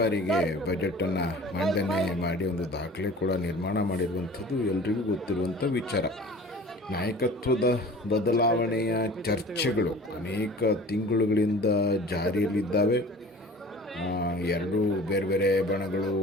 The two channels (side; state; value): both; normal; correlation 0.44